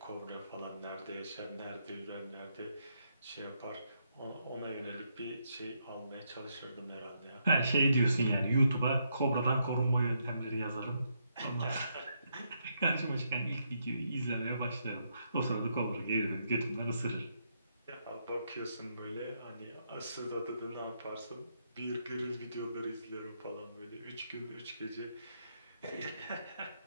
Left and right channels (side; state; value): both; inverted; correlation -0.78